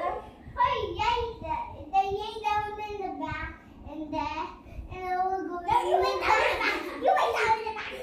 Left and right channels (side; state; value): both; identical; correlation 1.00